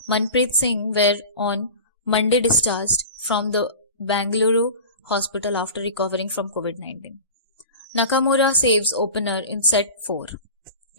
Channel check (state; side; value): inverted; both; correlation -0.35